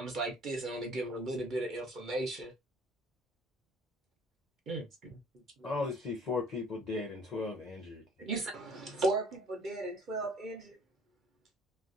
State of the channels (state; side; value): normal; both; correlation 0.54